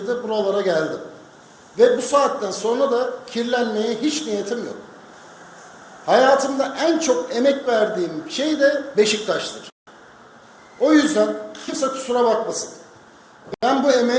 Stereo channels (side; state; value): both; identical; correlation 1.00